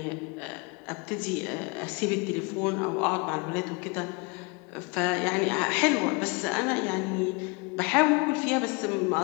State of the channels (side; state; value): right; quieter; 29.5 dB